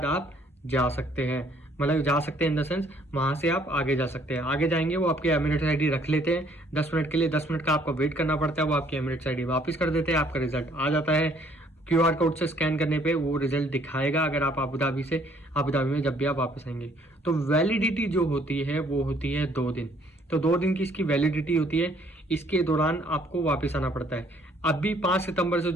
आप जा सकते हैं। मतलब जा सकते हैं इन द सेंस वहां से आप आगे जा सकते हैं। आगे जाएंगे वो आपकी एमिरेट्स आईडी रख लेते हैं 10 मिनट के लिए। 10 मिनट का आपको वेट करना पड़ता है, वो आपकी एमिरेट्स आईडी वापस कर देते हैं, आपका रिजल्ट आ जाता है। क्यूआर कोड से स्कैन करने पे वो रिजल्ट दिखाएगा अगर आप अबू धाबी में जब भी आप वापस आएंगे। तो वैलिडिटी जो होती है वो होती है 2 दिन। तो 2 दिन की इसकी वैलिडिटी होती है, इसके दौरान आपको वापस आना पड़ता है। अभी 5 सितंबर से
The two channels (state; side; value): normal; both; correlation 0.63